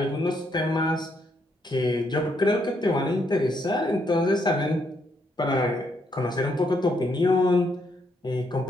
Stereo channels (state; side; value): normal; both; correlation 0.75